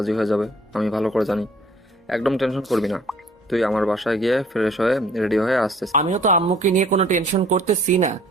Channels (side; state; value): both; normal; correlation 0.56